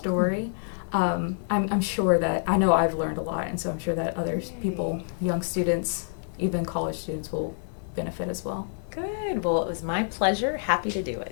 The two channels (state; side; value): silent; right; digital silence